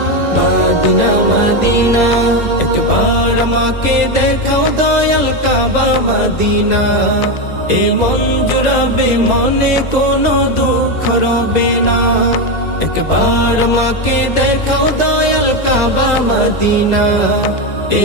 Medina Medina. একবার আমাকে দেখাও দয়াল কাবা মদিনা, এ মন জুড়াবে মনে কোনো দুঃখ রবে না। একবার আমাকে দেখাও দয়াল কাবা মদিনা, এ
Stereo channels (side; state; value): right; late; 2.0 ms